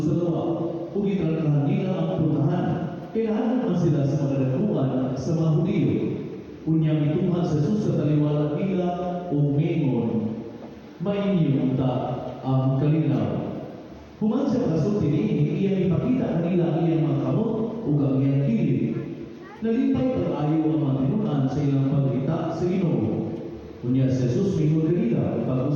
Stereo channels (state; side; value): identical; both; correlation 1.00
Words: lawa, ug italakahan nila ang puntahan. Kailangan naman sila sa mga nagkuhan sa mga Hudiyo. Unyang ituhan sa Jesus sa taliwala nila o mengon, mainyo ta ang kalinaw. Human sa kasulti niini, iyang ipakita kanila ang iyang mga kamot ug ang iyang kilid. Nalipay pag-ayo ang mga tinuan sa ilang pagkita sa Ginoo. Unya si Jesus mingon kanila